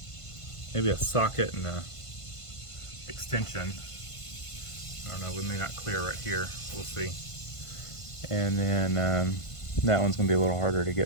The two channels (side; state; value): right; late; 1.5 ms